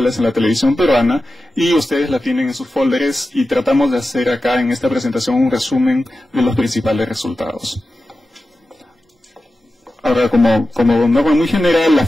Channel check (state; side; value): normal; both; correlation 0.93